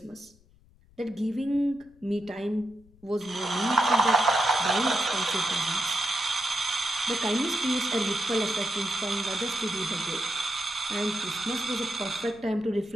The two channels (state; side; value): noise; left; rumble, 28 dB below the sound